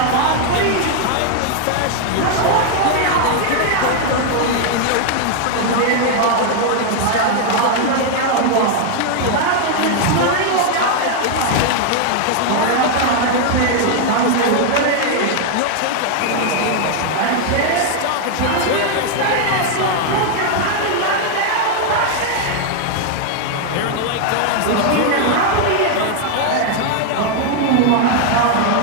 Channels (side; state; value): both; different; correlation 0.00